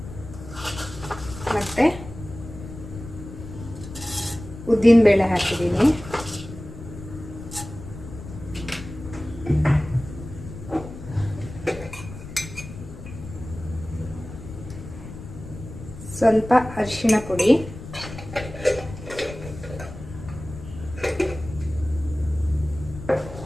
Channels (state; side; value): noise; left; rumble, 12 dB below the sound